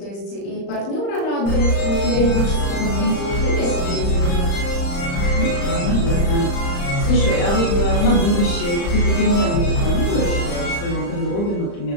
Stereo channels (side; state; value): right; late; 35 ms